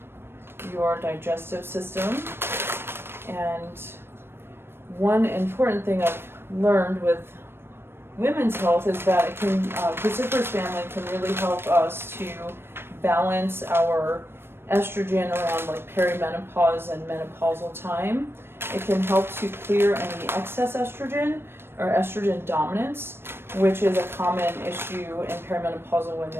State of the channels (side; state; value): left; late; 0.11 ms